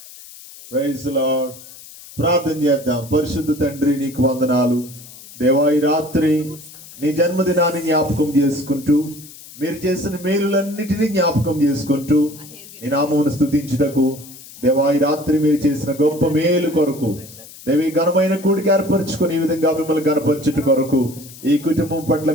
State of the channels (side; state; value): left; noise; hiss, 18 dB below the sound